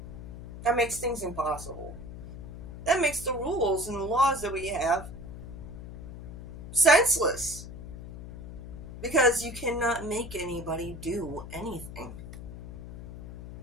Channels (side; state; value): left; noise; hum, 11 dB below the sound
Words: that makes things impossible. That makes the rules and the laws that we have senseless. Because you cannot make anybody do anything.